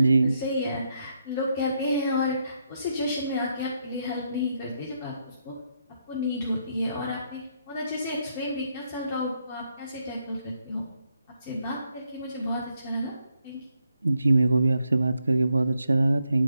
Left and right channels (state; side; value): inverted; both; correlation -0.78